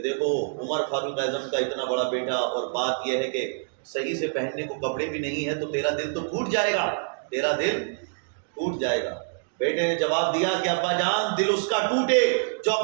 دیکھو عمر فاروق اعظم کا اتنا بڑا بیٹا، اور بات یہ ہے کہ صحیح سے پہننے کو کپڑے بھی نہیں ہے، تو تیرا دل تو ٹوٹ جائے گا، تیرا دل ٹوٹ جائے گا۔ بیٹے نے جواب دیا کہ ابا جان دل اس کا ٹوٹے جو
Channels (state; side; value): silent; left; digital silence